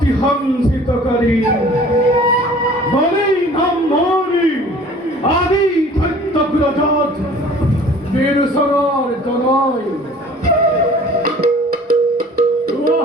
হংসিতকারী বলেই নাম মরি আদি ধৈত্যগ্রজাত বীরসরার জনয়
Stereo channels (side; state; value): both; normal; correlation 0.49